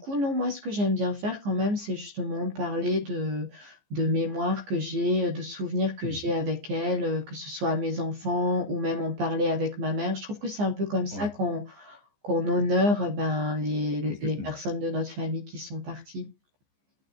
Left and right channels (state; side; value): late; left; 14 ms